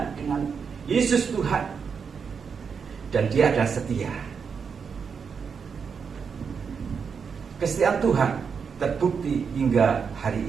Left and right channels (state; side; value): quieter; left; 6.2 dB